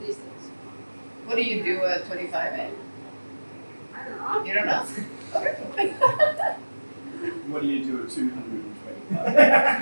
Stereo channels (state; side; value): inverted; both; correlation -1.00